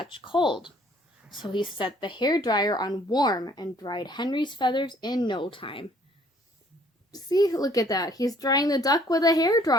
cold, so he set the hairdryer on warm and dried Henry's feathers in no time. See, look at that. He's drying the duck with a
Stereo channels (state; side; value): normal; both; correlation 0.60